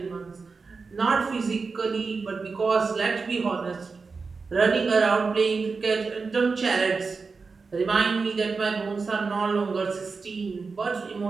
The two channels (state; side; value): quieter; left; 4.6 dB